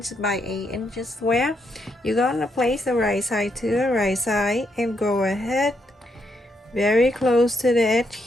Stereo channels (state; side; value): normal; both; correlation 0.78